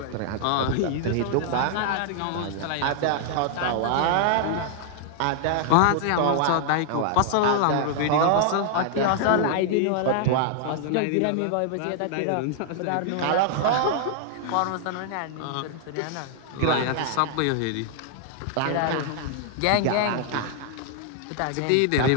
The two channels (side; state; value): both; different; correlation 0.00